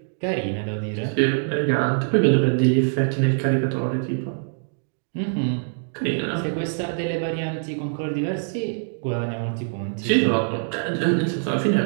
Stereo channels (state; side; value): silent; left; digital silence